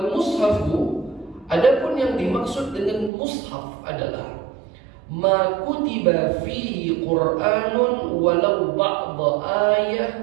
mushafu, adapun yang dimaksud dengan mushaf adalah ma kutiba fihi Qur'anun walau ba'da ayah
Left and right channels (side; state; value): left; drops out; at 3.1 s